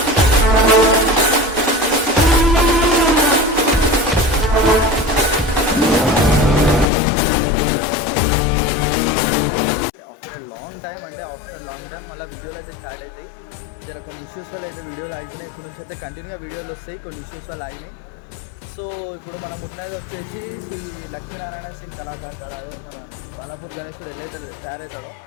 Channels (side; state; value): right; drops out; at 6.9 s